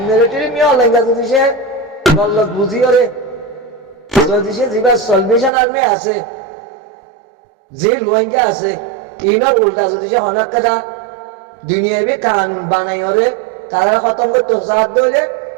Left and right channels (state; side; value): drops out; left; at 5.5 s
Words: মিলিটারি মিয়া লেঙ্গা যদি সে গল্লত বুঝি ওরে যদি সে যেবা সলভেশন আর্মি আছে যে রোহিঙ্গা আছে ইনর উল্টা যদি সে অনেক কথা দুনিয়াবি কানুন বানাই ওরে তারা খতম করতে সাহায্য হইলে